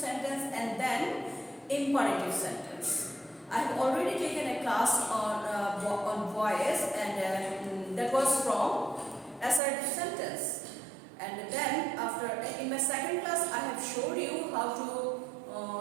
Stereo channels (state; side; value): drops out; left; at 9.6 s